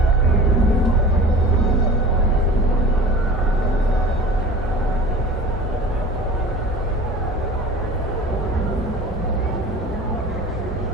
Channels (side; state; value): both; normal; correlation 0.40